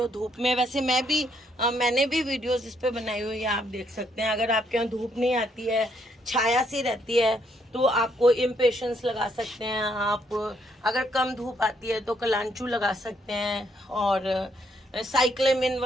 धूप में, वैसे मैंने भी वीडियोस इस पे बनाई हुई है, आप देख सकते हैं। अगर आपके यहाँ धूप नहीं आती है, छाया सी रहती है, तो आपको इम्पेशंस लगा सकते हैं आप। अगर कम धूप आती है तो कलांचू लगा सकते हैं, और साइक्लेमिन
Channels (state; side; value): normal; both; correlation 0.73